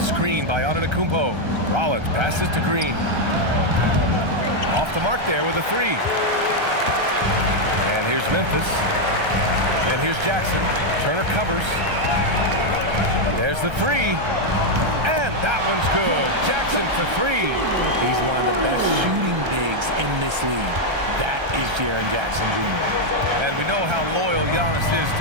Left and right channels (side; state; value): left; late; 1.3 ms